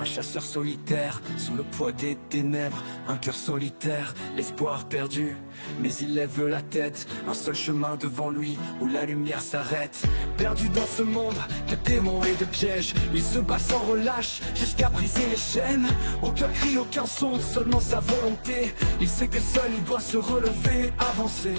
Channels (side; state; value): both; inverted; correlation -1.00